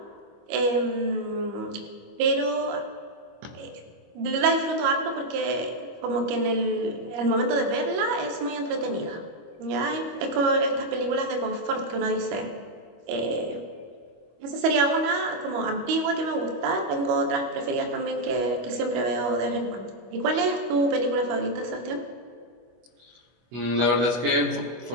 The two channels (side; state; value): left; late; 25 ms